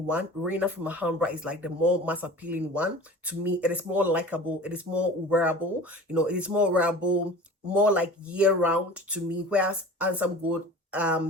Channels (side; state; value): both; normal; correlation 0.39